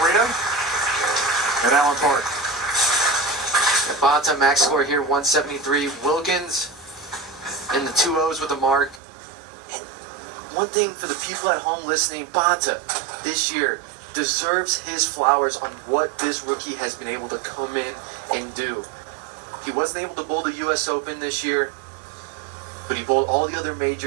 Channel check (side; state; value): left; drops out; at 9.0 s